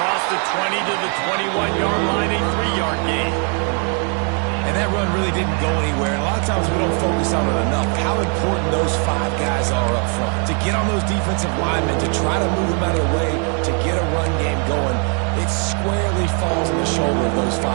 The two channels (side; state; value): left; quieter; 39.8 dB